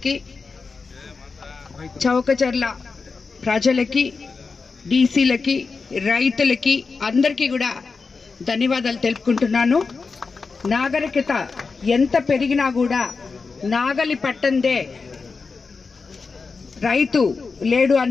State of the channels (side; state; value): right; quieter; 4.6 dB